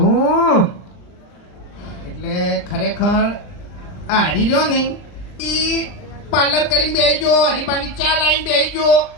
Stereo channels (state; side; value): late; right; 39 ms